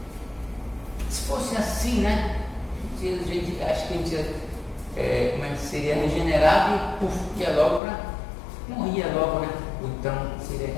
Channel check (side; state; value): right; drops out; at 7.8 s